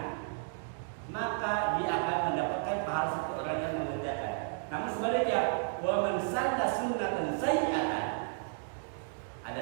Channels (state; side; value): silent; left; digital silence